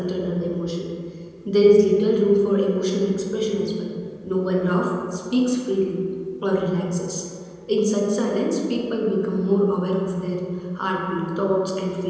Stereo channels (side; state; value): both; identical; correlation 1.00